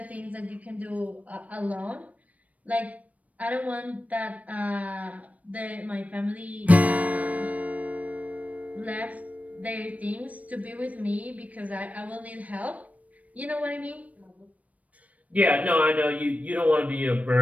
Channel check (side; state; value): left; late; 0.069 ms